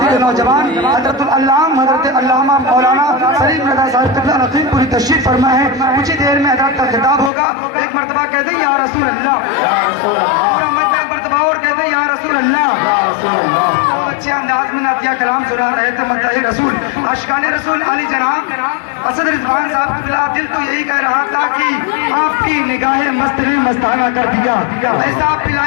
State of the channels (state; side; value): drops out; right; at 7.3 s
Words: نوجوان حضرت العلام حضرت علامہ مولانا سلیم رضا صاحب قبلہ نقیب پوری تشریف فرما ہے۔ کچھ ہی دیر میں حضرت کا خطاب ہوگا۔ ایک مرتبہ کہتے ہیں یا رسول اللہ، پورا مجمع ایک مرتبہ اور کہتے ہیں یا رسول اللہ۔ بہت اچھے انداز میں نعتیہ کلام سنا رہے تھے مداح رسول عاشقان رسول علی جناب اسد رضوان صاحب قبلہ دل تو یہی کہہ رہا تھا کہ آپ کی نگاہیں مست نے مستانہ کر دیا، ایسا